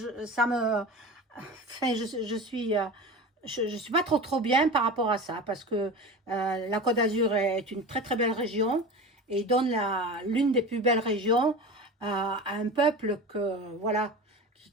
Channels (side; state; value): both; normal; correlation 0.31